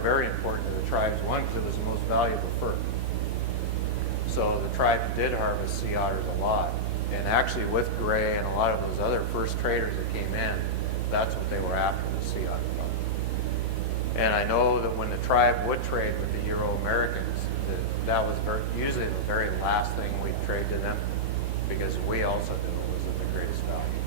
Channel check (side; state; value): left; late; 8.1 ms